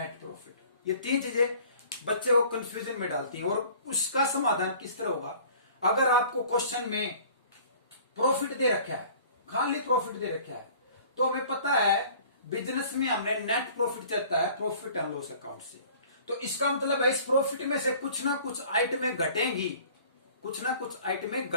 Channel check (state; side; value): inverted; both; correlation -0.49